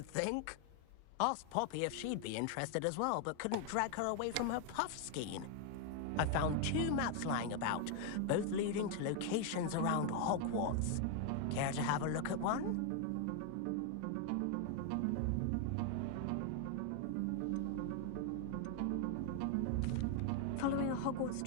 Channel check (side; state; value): both; different; correlation 0.00